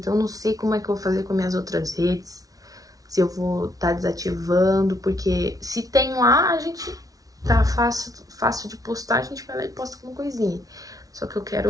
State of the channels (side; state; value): left; late; 0.18 ms